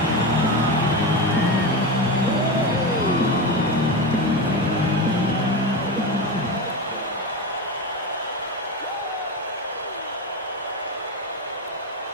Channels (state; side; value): normal; both; correlation 0.18